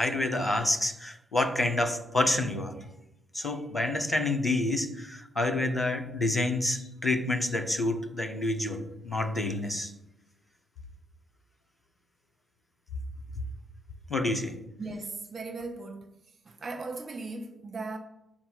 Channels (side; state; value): both; normal; correlation 0.77